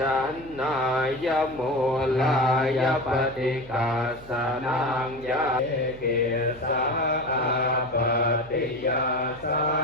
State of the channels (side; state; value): right; noise; hum, 20 dB below the sound